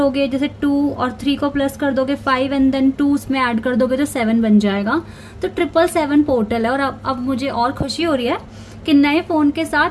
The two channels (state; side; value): identical; both; correlation 1.00